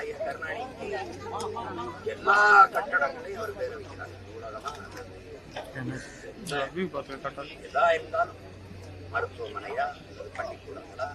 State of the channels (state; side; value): identical; both; correlation 1.00